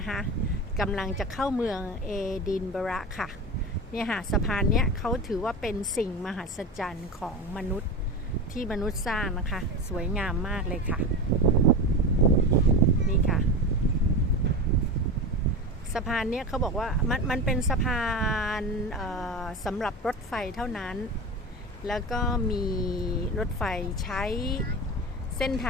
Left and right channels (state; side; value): normal; both; correlation 0.25